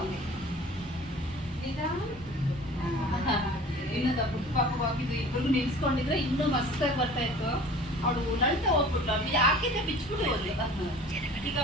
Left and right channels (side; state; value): both; normal; correlation 0.44